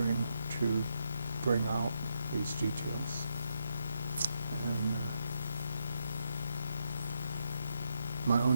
to bring out these details. And my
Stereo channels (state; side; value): inverted; both; correlation -0.80